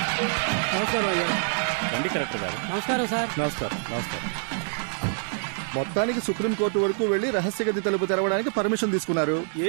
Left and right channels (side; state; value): left; silent; digital silence